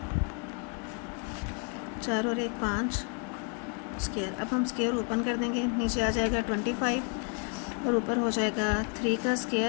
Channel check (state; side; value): quieter; right; 39.0 dB